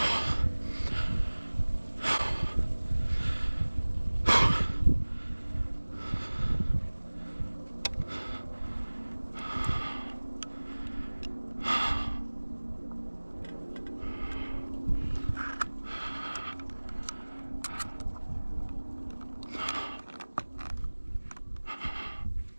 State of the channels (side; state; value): both; inverted; correlation -1.00